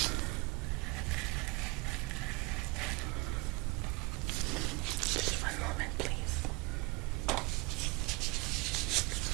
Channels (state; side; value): quieter; left; 26.1 dB